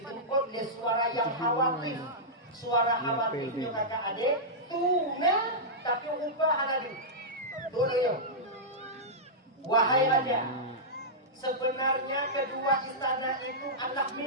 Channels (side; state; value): both; normal; correlation -0.11